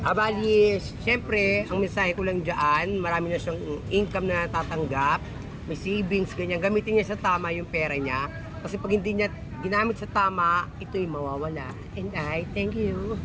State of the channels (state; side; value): identical; both; correlation 1.00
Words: siya. Bali, syempre, ang mensahe ko lang dyan, marami na siyang income na natatanggap, may savings, ganyan. Gamitin niya sa tama yung pera niya. Kasi pag hindi niya ginamit sa tama, ito'y mawawala. And I thank you.